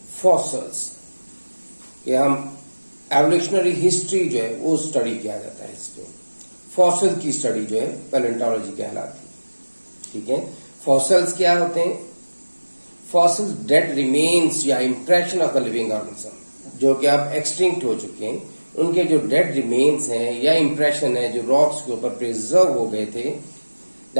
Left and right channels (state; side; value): inverted; both; correlation -1.00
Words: fossils. ये हम एवोल्यूशनरी हिस्ट्री जो है वो स्टडी किया जाता है इसमें। फॉसिल की स्टडी जो है पैलेंटोलॉजी कहलाती है। ठीक है, फॉसिल्स क्या होते हैं? फॉसिल्स डेड रिमेन्स या impression of the living organism, जो कि अब एक्सटिंक्ट हो चुके हैं, उनके जो डेड रिमेन्स हैं या इंप्रेशन है जो रॉक्स के ऊपर प्रिजर्व हो गए थे,